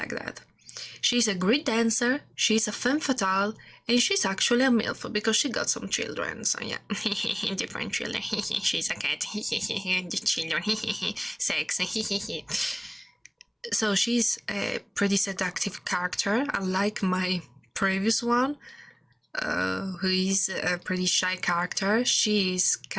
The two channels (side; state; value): both; identical; correlation 1.00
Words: that. She's a great dancer, she's a femme fatale, and she's actually a MILF because she got some children, so yeah, different children, she's a cat, children, sex, so she's a pretty seductive character, unlike my previous one, who is a pretty shy character. She's